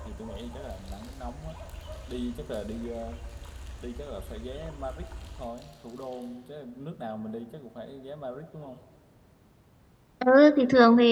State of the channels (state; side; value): identical; both; correlation 1.00